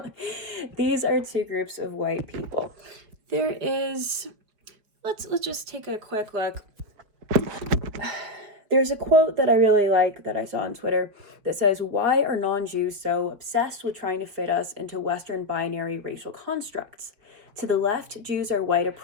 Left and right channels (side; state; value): left; late; 5.0 ms